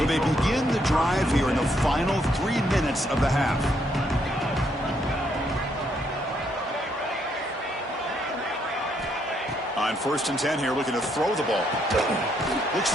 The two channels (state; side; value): normal; both; correlation 0.73